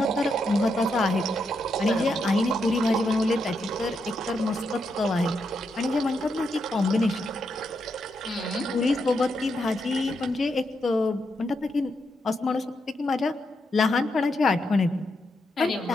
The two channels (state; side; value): normal; both; correlation 0.82